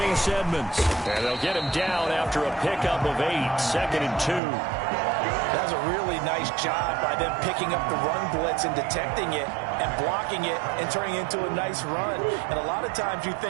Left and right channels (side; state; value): left; drops out; at 4.4 s